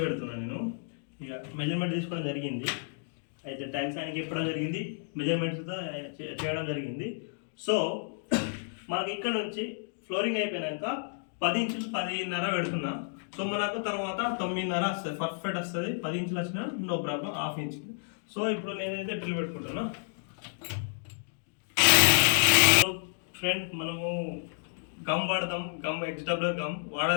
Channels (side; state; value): right; silent; digital silence